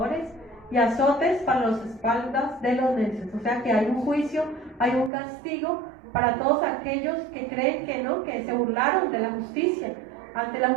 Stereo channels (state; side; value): drops out; left; at 5.1 s